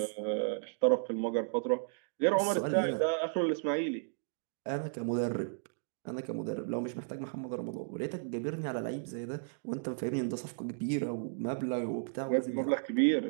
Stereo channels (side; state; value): left; silent; digital silence